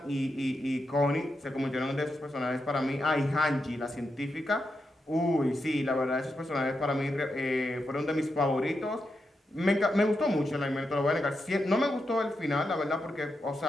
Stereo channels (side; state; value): both; normal; correlation 0.86